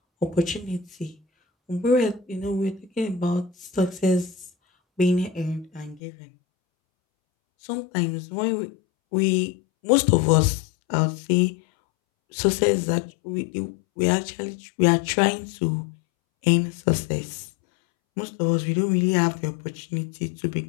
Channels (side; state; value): right; drops out; at 6.0 s